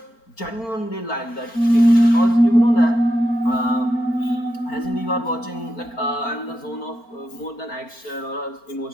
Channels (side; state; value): right; late; 4.4 ms